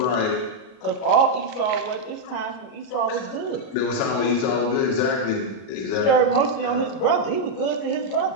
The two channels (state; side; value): late; right; 37 ms